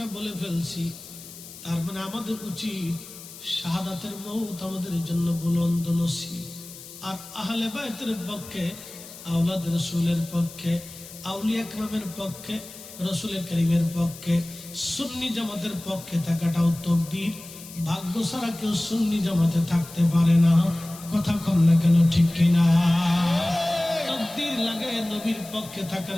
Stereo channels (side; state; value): left; noise; hiss, 16 dB below the sound